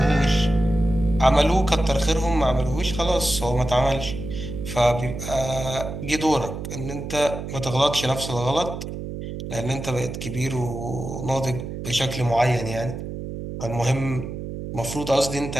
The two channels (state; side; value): noise; right; hum, 7 dB below the sound